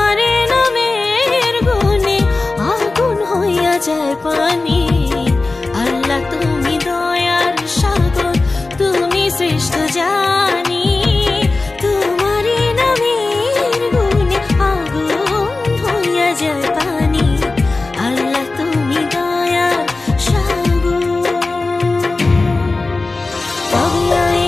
নামের গুণে আগুন হইয়া যায় পানি। আল্লাহ তুমি দয়ার সাগর, তুমি শ্রেষ্ঠ জানি তোমারে নামের গুণে আগুন হইয়া যায় পানি। আল্লাহ তুমি দয়ার সাগর।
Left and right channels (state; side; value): quieter; right; 3.5 dB